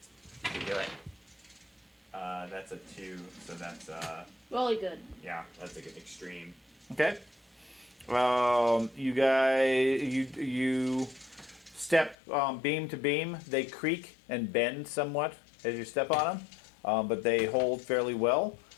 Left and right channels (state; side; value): drops out; right; at 12.2 s